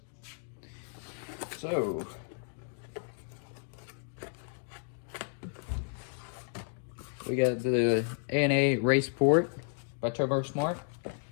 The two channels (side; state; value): right; silent; 55 dB below the other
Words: So we got the A&A Raceport by Turbo Smart.